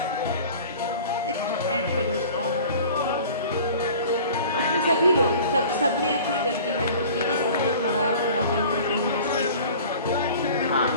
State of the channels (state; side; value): inverted; both; correlation -0.44